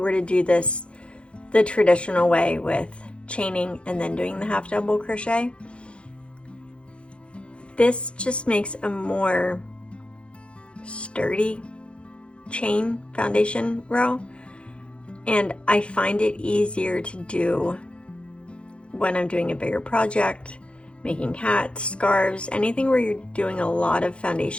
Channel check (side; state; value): right; late; 0.058 ms